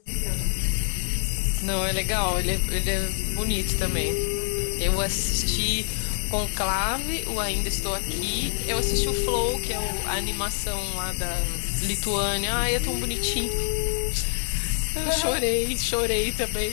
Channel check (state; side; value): silent; right; digital silence